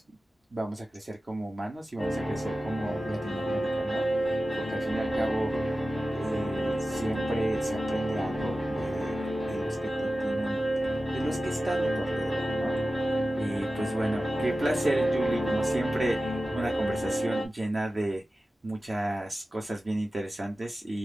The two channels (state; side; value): normal; both; correlation 0.95